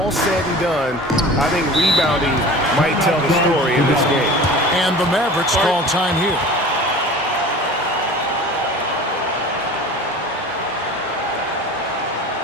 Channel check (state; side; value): normal; both; correlation 0.39